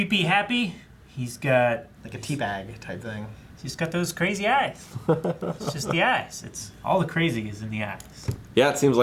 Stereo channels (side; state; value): both; identical; correlation 1.00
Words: happy. He's got Like a teabag type thing. he's got those crazy eyes. It's just the eyes. It's all the crazy is in the eyes. Yeah, it seems